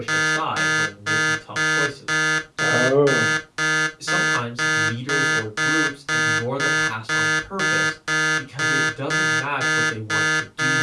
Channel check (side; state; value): both; identical; correlation 1.00